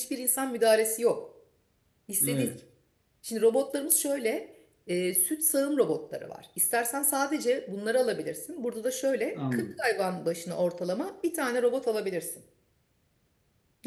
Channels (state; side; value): identical; both; correlation 1.00